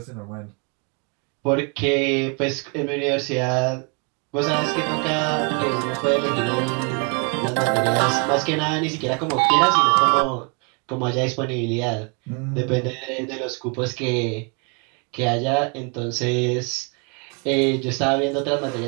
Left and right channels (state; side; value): quieter; left; 34.3 dB